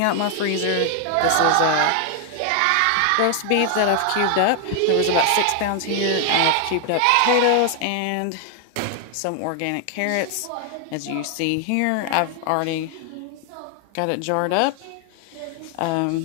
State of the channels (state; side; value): different; both; correlation 0.00